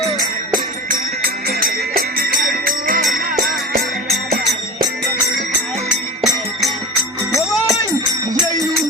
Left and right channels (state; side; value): normal; both; correlation 0.30